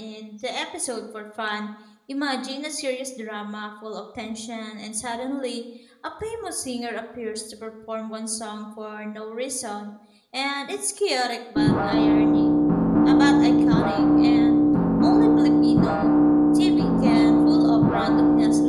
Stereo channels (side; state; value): both; identical; correlation 1.00